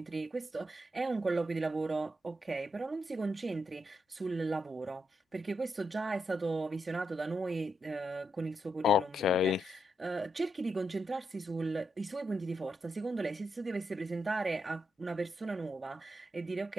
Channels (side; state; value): both; normal; correlation 0.82